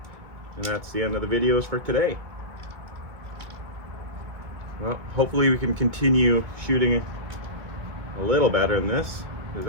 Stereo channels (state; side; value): late; left; 2.1 ms